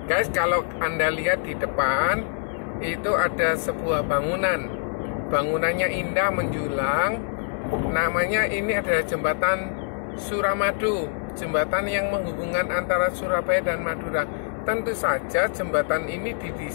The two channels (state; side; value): silent; right; 60 dB below the other